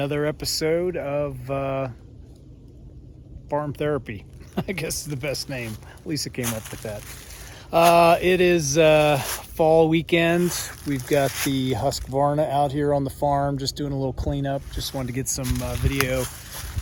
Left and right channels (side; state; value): both; identical; correlation 1.00